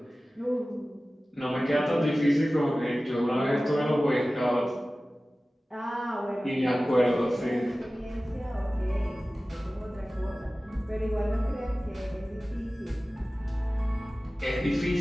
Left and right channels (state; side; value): normal; both; correlation 0.97